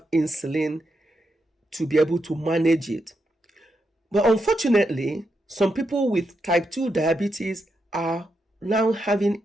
insulin to be able to manage it. But unfortunately, some people with type 2 diabetes are now having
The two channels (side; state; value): both; normal; correlation 0.83